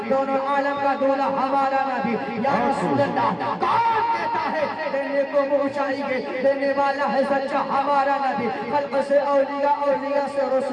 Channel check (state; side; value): identical; both; correlation 1.00